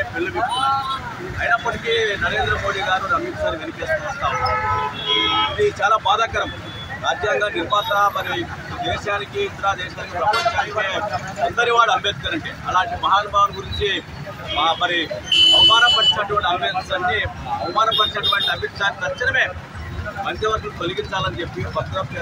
పెళ్లిపెట్టుకున్నారు. అయినప్పటికీ నరేంద్ర మోడీ గారు అమిత్ షాని వెనకేసుకుని వస్తా ఉన్నారు. ఇది చాలా బాధాకరం. రాజ్యాంగ నిర్మాత, మరి దేశానికి, ఇతర దేశానికి, ప్రపంచానికి అందరి వాడు అంబేద్కర్ అంటే, అలాంటి మహానుభావుని గురించి మరి అవమానపరిచినటువంటి అమిత్ షాని తక్షణమే మంత్రివర్గం తొలగించాలని చెప్పి, భద్రత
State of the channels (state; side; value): identical; both; correlation 1.00